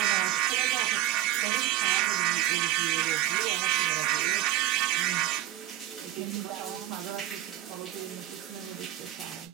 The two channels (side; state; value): left; quieter; 14.1 dB